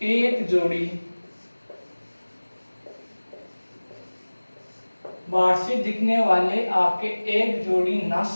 एक जोड़ी, बाहर से दिखने वाले आपके एक जोड़ी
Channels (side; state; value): both; inverted; correlation -1.00